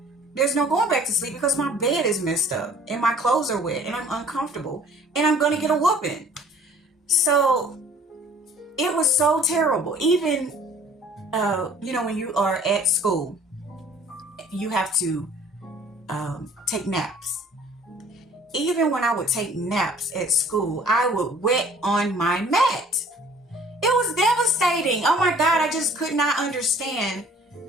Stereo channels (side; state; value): both; normal; correlation 0.53